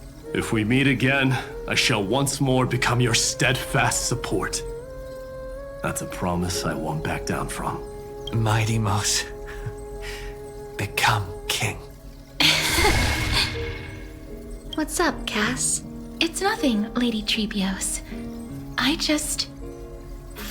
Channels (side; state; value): both; identical; correlation 1.00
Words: If we meet again, I shall once more become your steadfast support. That's a promise I won't back down from. Mighty Mouse, become king. What's up, Cass? It's nothing, Lady Trebios. I just